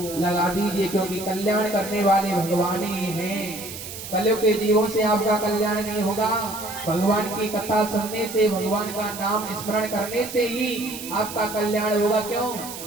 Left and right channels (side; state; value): right; noise; hiss, 10 dB below the sound